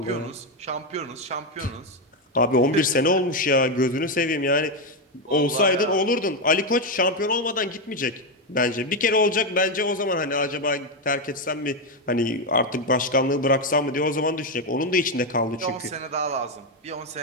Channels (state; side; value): normal; both; correlation 0.07